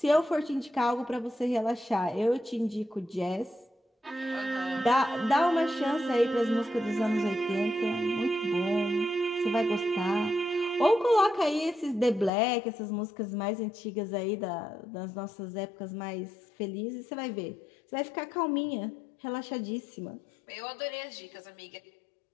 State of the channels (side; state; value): right; drops out; at 12.3 s